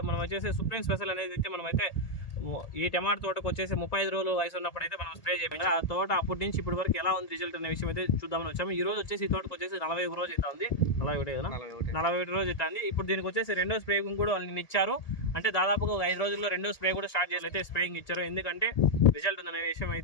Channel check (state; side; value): late; right; 1.8 ms